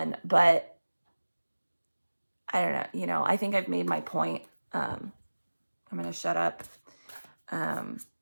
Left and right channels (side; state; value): both; inverted; correlation -1.00